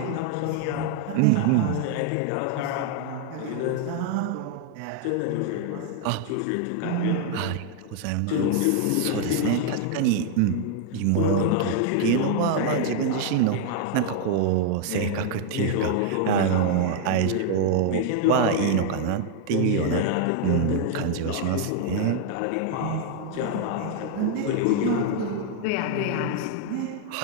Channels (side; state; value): both; different; correlation 0.00